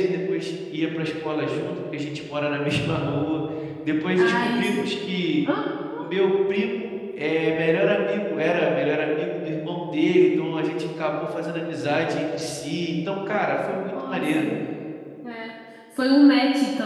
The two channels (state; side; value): identical; both; correlation 1.00